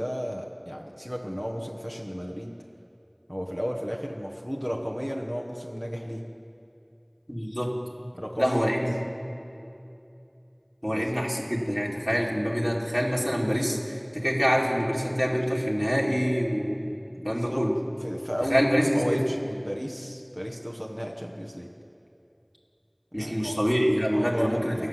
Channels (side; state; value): both; identical; correlation 1.00